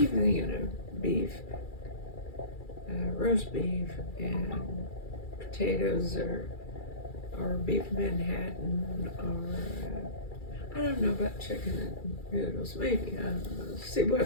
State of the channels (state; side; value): late; right; 2.3 ms